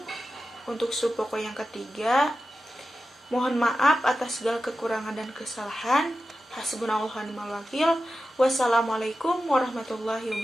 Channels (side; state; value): both; normal; correlation 0.92